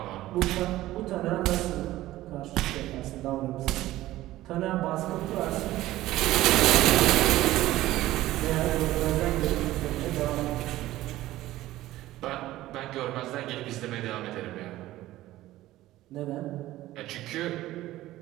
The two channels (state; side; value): quieter; left; 15.8 dB